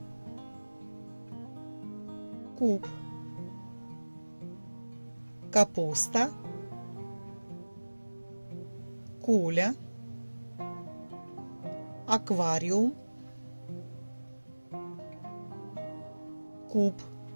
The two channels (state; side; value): inverted; both; correlation -1.00